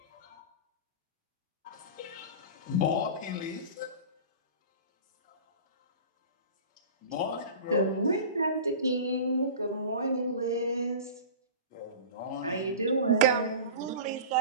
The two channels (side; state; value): both; inverted; correlation -0.35